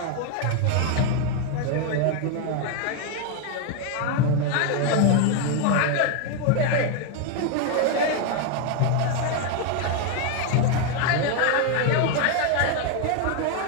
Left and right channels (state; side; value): different; both; correlation 0.01